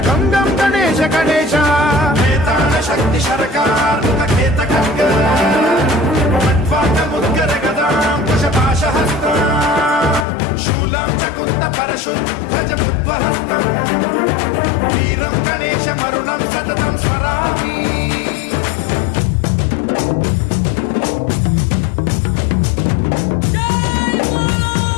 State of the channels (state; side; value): drops out; right; at 10.2 s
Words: गम गम गणेश गणेश वेताल शक्ति शरकार मुखखेत खड्ग खट्वाङ्गमुद्गर गदां कुशपाशहस्तां शूलं च कुन्द परशुध्वजमुद्वहस्तम् वीरं गणेशवरुणं सततं स्मरामि।